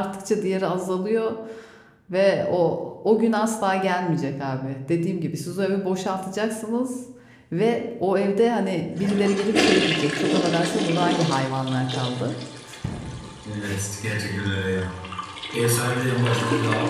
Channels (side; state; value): both; identical; correlation 1.00